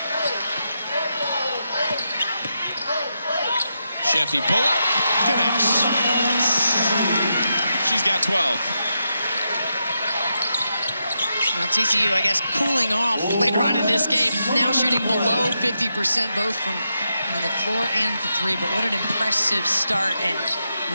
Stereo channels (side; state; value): both; inverted; correlation -0.85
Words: Sheffy pull up, connects. She's got 12. Now TCU, I guess, cooling off later on in this game. Now shooting below 50%, both from the floor and the 3. But what an impressive start and